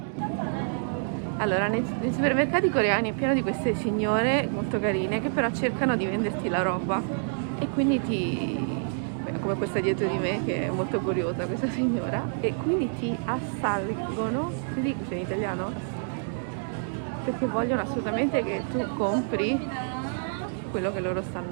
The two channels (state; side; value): silent; left; digital silence